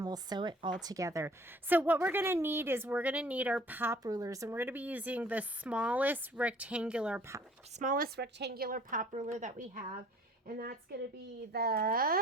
we'll sew it all together. So what we're going to need is we're going to need our pop rulers, and we're going to be using the smallest rectangular pop ruler that we have, and that's going to be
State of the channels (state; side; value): normal; both; correlation 0.53